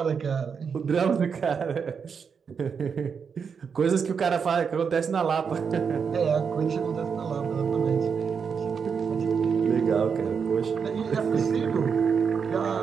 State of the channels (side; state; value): left; quieter; 6.3 dB